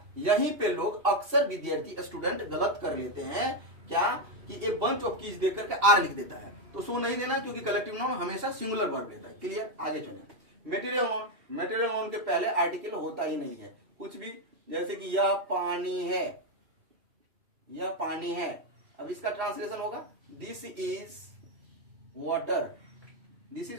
यहीं पे लोग अक्सर विद्यार्थी स्टूडेंट गलत कर लेते हैं, क्या कि ए बंच ऑफ कीज देख करके आर लिख देता है, तो सो नहीं देना, क्योंकि कलेक्टिव नाउन हमेशा सिंगुलर वर्ब लेता है। क्लियर? आगे चले। मटेरियल नाउन के पहले आर्टिकल होता ही नहीं है कुछ भी, जैसे कि यह पानी है, यह पानी है, अब इसका ट्रांसलेशन होगा this is water, this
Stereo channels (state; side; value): late; left; 2.7 ms